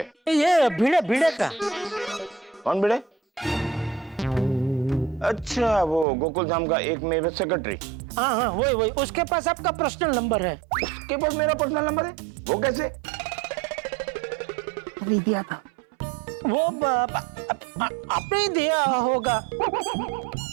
ये भिड़े का. कौन भिड़े? अच्छा, वो गोकुलधाम का एक मेरे सेक्रेटरी. हाँ, वही. उसके पास आपका पर्सनल नंबर है. उसके पास मेरा पर्सनल नंबर है? वो कैसे? नहीं दिया था. वो आपने ही दिया होगा.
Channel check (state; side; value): drops out; left; at 6.1 s